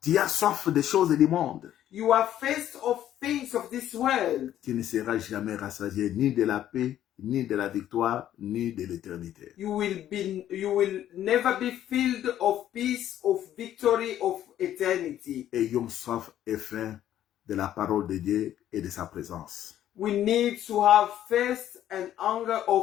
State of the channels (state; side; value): quieter; right; 11.7 dB